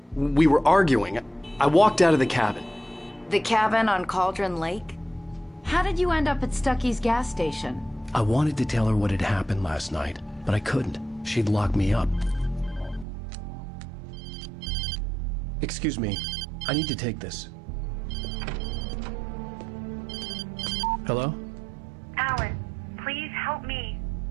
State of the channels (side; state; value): left; drops out; at 13.1 s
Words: We were arguing. I walked out of the cabin. The cabin on Cauldron Lake? How did you end up at Stucky's gas station? I wanted to tell her what had happened last night, but I couldn't. She'd lock me up. Excuse me. I need to take this. Hello? Alan, please help me.